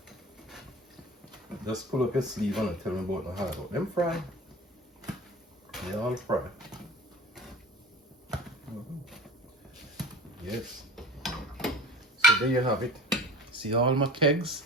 Just pull up your sleeve and tell me about the hard work. Them fry. They all fry. Yes. So there you have it. See all my kegs,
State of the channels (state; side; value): normal; both; correlation 0.38